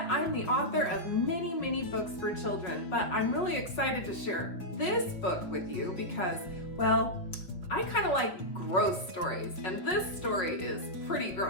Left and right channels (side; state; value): right; late; 5.7 ms